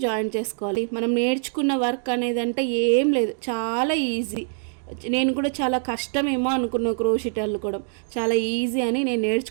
జాయిన్ చేసుకోవాలి. మనం నేర్చుకున్న వర్క్ అనేది అంటే ఏం లేదు, చాలా ఈజీ. నేను కూడా చాలా కష్టమేమో అనుకున్నా క్రోషెట్ అల్లుకోవడం, చాలా ఈజీ అని నేను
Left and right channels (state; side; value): silent; left; digital silence